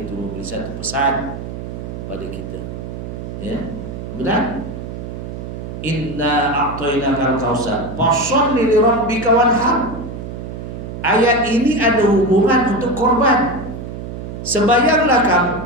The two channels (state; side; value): noise; right; hum, 8 dB below the sound